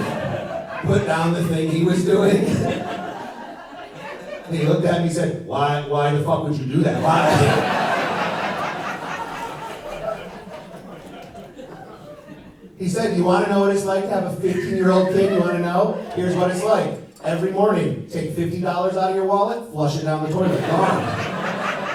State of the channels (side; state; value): both; identical; correlation 1.00